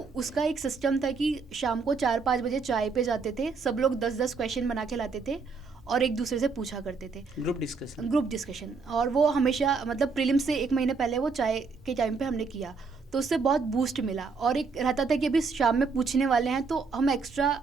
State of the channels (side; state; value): left; quieter; 4.7 dB